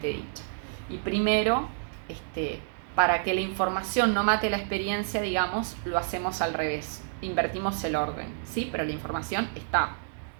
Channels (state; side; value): silent; left; digital silence